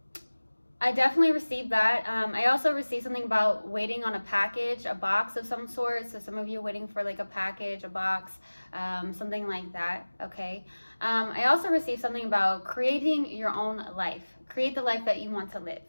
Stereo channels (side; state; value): both; inverted; correlation -1.00